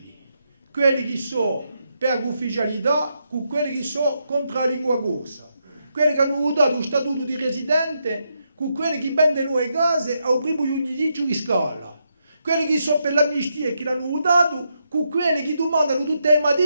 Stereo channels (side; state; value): both; inverted; correlation -0.81